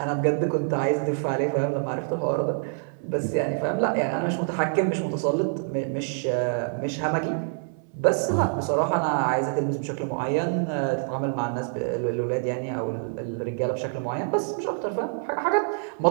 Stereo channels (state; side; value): silent; left; 61 dB below the other